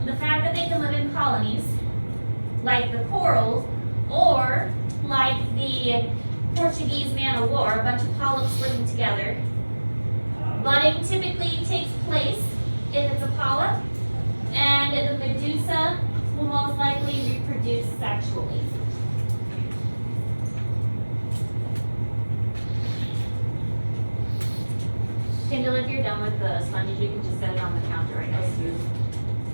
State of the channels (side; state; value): both; inverted; correlation -1.00